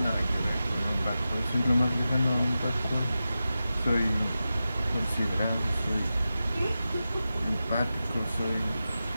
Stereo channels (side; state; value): both; inverted; correlation -0.92